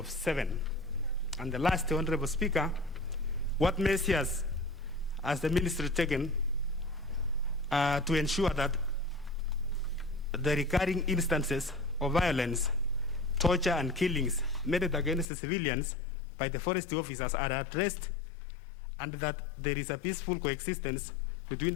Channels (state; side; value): drops out; right; at 15.2 s